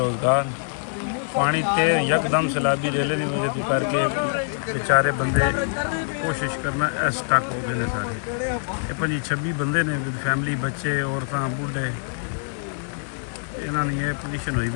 पानी तेर यकदम सैलाबी रेले की वजह तो करके बेचारे बंदे कोशिश करना स्टक हो गए सारे। ये 25-26 बंदे ने फैमिली बच्चे औरतां बूढ़े इन्होंने ये पोजीशन हुई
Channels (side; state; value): right; silent; digital silence